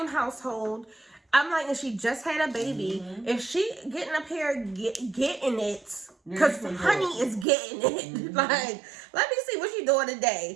household. I'm like, and she just had a baby. If she getting up here getting it, because honey is getting it. Like, let me see what she doing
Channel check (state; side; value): drops out; left; at 7.5 s